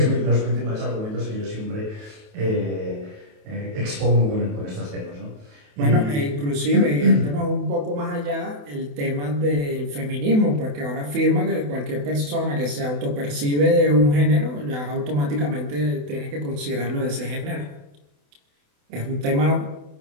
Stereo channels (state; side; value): late; left; 28 ms